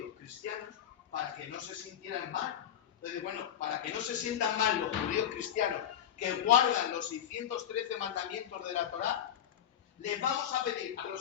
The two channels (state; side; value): quieter; right; 9.9 dB